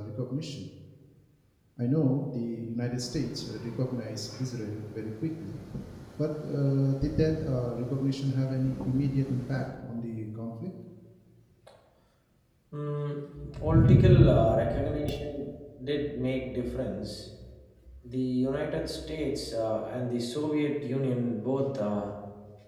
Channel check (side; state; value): both; identical; correlation 1.00